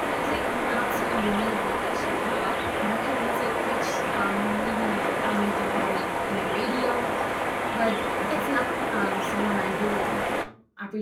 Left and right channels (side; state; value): both; identical; correlation 1.00